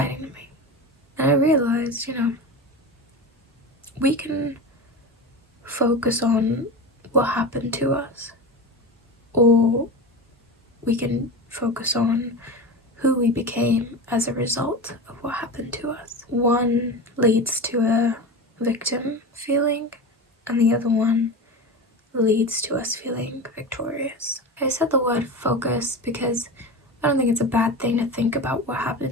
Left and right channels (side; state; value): both; normal; correlation 0.25